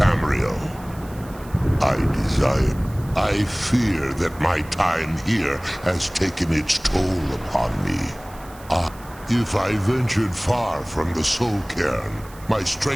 I fear that my time here has taken its toll upon me. If I ventured far from the Soul Cairn, my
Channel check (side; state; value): right; noise; hiss, 22 dB below the sound